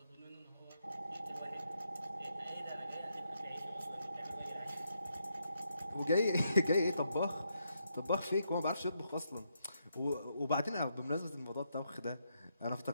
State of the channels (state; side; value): inverted; both; correlation -0.79